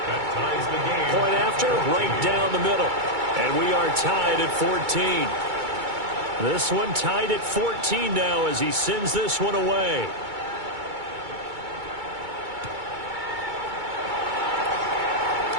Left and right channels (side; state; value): left; late; 2.3 ms